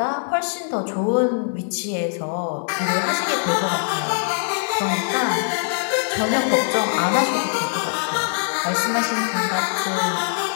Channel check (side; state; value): right; silent; 61 dB below the other